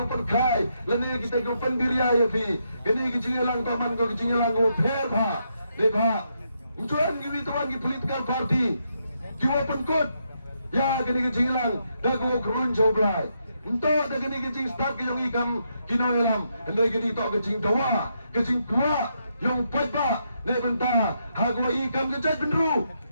perkai. Lene kita kita pendiria ya pi. Kini kecinglang taman ko kecinglang ko fair ba. Dekha. Tuan kita tuan kita political party. Kita penkut. Ya kini kecinglang. Dah ko kerun coblai. Untuk dah kini kecing start yang ikam kinong lam. Hendai kini tak kecing dawa. Kecing tua. Yang pajba. Ne benta. Hagwa ikam kecaj benru.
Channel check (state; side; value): inverted; both; correlation -0.79